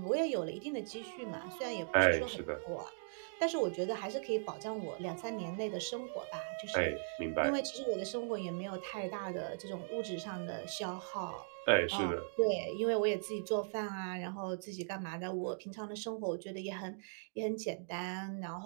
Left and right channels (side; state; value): left; silent; digital silence